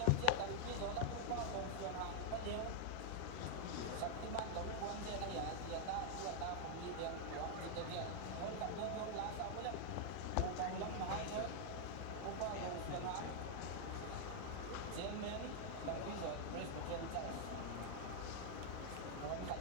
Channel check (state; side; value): different; both; correlation -0.01